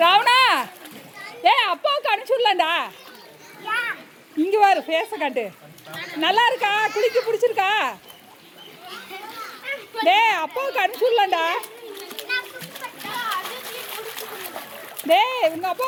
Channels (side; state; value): both; identical; correlation 1.00